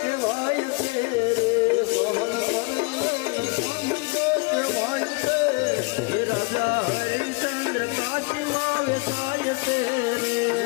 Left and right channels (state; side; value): quieter; right; 29.7 dB